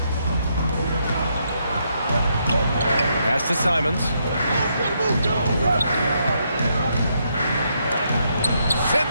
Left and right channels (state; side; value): inverted; both; correlation -0.77